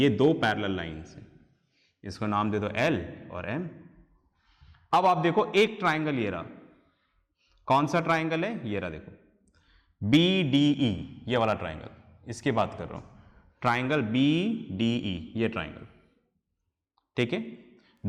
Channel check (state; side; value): identical; both; correlation 1.00